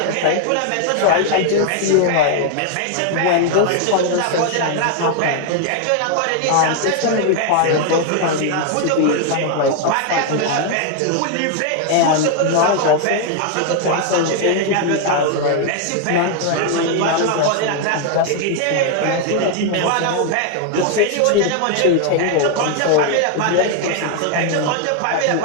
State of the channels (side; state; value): both; different; correlation 0.01